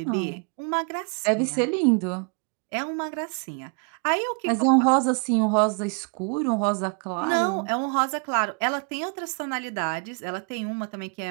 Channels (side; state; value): left; quieter; 39.2 dB